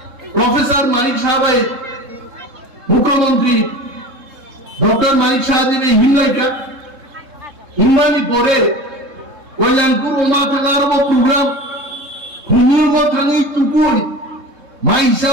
প্রফেসর মানিক সাহেব মুখ্যমন্ত্রী ডক্টর মানিক সাহেব হিমলাইকা হিমানি পরে কল্যাণপুর ওমা থাকার প্রোগ্রাম হুমির থাকি টুকুই মাইসা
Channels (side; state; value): left; late; 3.7 ms